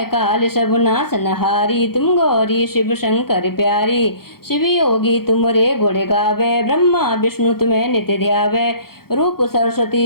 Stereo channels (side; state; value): right; late; 0.94 ms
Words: काल सब नासनहारी, तुम गौरी शिव शंकर प्यारी। शिव योगी तुमरे गुण गावे, ब्रह्मा विष्णु तुम्हें नित्य ध्यावे। रूप